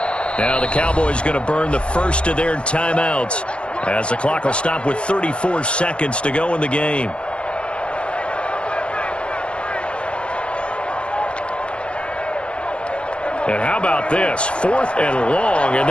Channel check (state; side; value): late; right; 0.058 ms